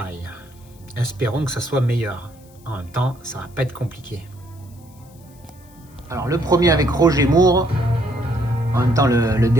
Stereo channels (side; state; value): left; noise; hiss, 28 dB below the sound